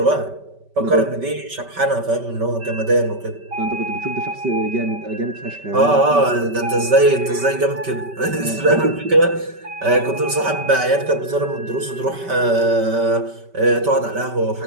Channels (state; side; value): late; left; 5.2 ms